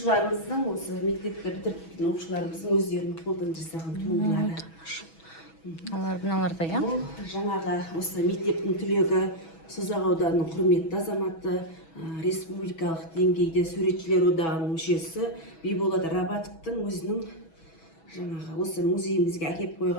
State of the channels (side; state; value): right; late; 6.1 ms